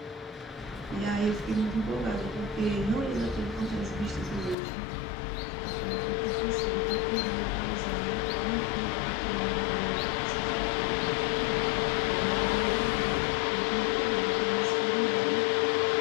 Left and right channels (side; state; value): right; drops out; at 4.5 s